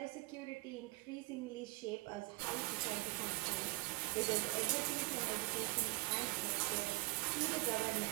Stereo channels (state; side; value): quieter; left; 23.1 dB